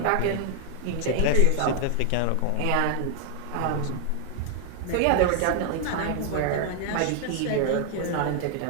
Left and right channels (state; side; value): different; both; correlation 0.00